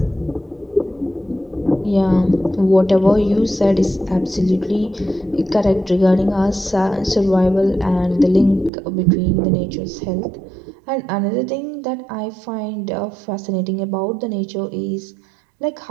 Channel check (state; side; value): drops out; left; at 8.7 s